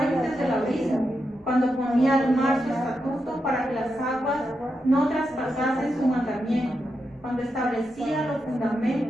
del abismo, cuando ponía al mar su estatuto para que las aguas no traspasasen su mandamiento, cuando establecía los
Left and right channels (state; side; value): normal; both; correlation 0.86